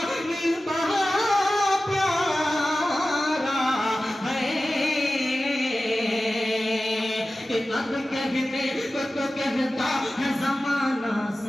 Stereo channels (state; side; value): normal; both; correlation 0.95